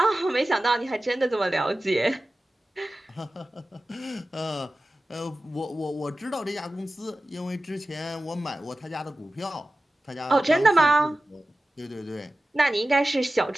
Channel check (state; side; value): normal; both; correlation 0.95